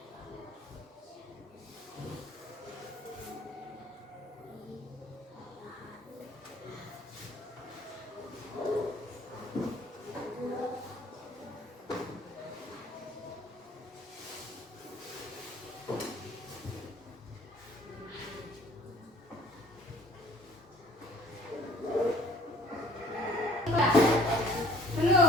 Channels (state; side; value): normal; both; correlation 0.54